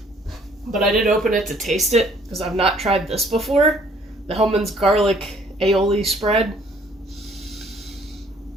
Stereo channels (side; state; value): both; normal; correlation 0.60